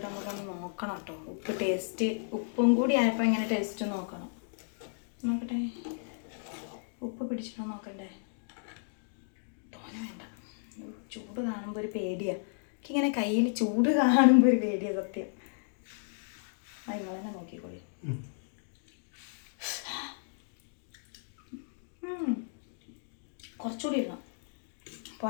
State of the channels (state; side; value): silent; right; digital silence